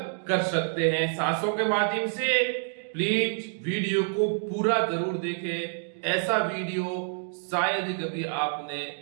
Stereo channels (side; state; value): left; silent; digital silence